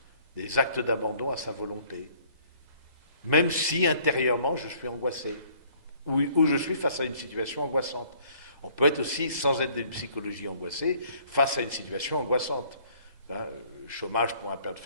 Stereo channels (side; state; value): left; late; 1.8 ms